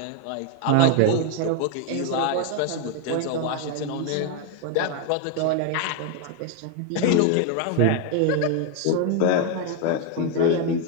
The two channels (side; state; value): both; different; correlation 0.01